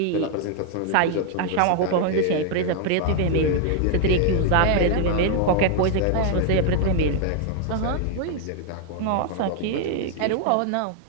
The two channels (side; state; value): both; different; correlation 0.00